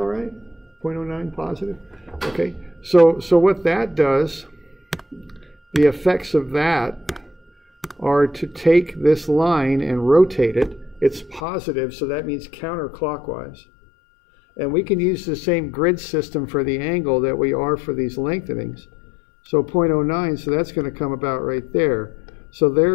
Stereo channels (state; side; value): drops out; right; at 11.4 s